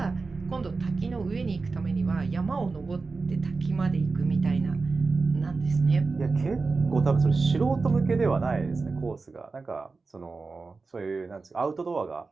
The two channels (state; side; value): quieter; left; 4.1 dB